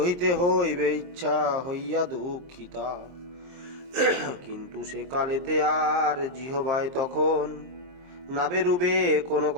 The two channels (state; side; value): late; left; 23 ms